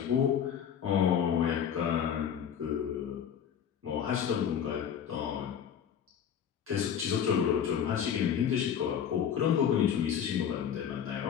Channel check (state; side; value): quieter; right; 8.5 dB